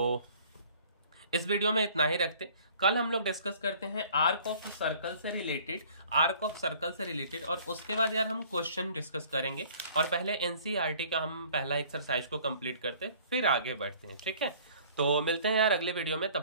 इस वीडियो में इतना ही रखते। कल हम लोग डिस्कस करते हैं आर्क ऑफ सर्कल से रिलेटेड, और उसके बाद यार हम क्वेश्चन डिस्कस करेंगे, और पहले NCERT का हम पहला एक्सरसाइज को कंप्लीट करते, फिर आगे बढ़ते हैं। ठीक है, तो मिलते हैं यार अगले वीडियो में,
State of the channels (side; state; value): both; inverted; correlation -0.53